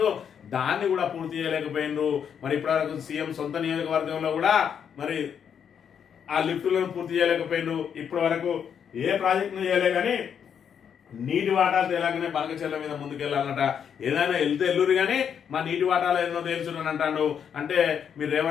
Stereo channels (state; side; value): quieter; right; 7.9 dB